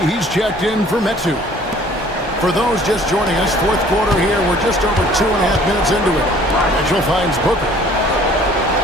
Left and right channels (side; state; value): both; normal; correlation 0.54